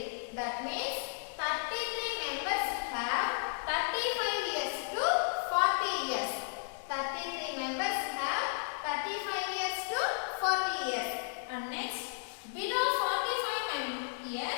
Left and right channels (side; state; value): right; silent; digital silence